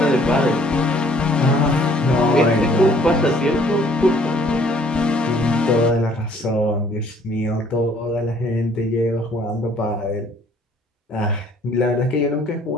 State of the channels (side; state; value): both; normal; correlation 0.59